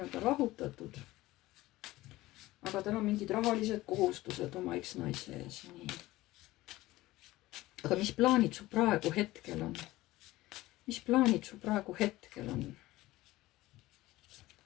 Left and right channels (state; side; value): quieter; right; 17.8 dB